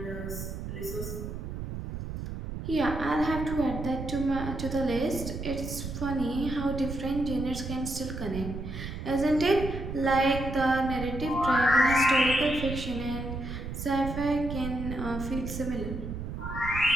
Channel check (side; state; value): right; noise; rumble, 6 dB below the sound